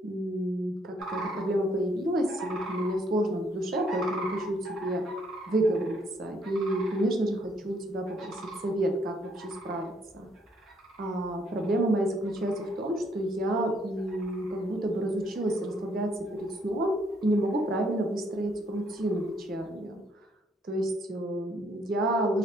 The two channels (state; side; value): normal; both; correlation 0.68